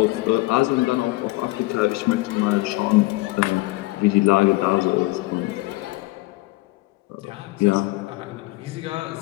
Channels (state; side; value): quieter; right; 21.1 dB